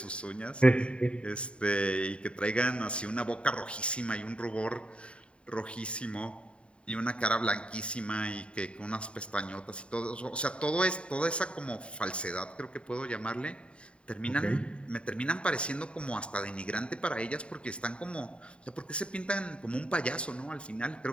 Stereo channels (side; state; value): right; late; 0.057 ms